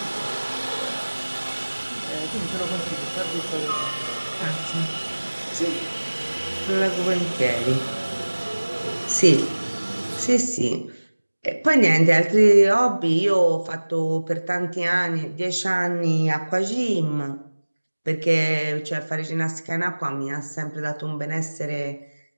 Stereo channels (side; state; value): both; inverted; correlation -1.00